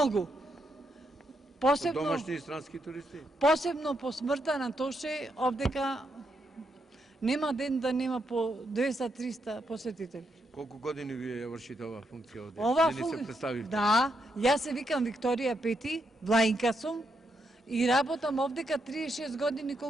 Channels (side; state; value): both; normal; correlation 0.80